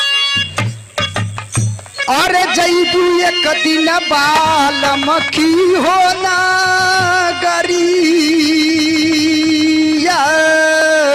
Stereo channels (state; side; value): identical; both; correlation 1.00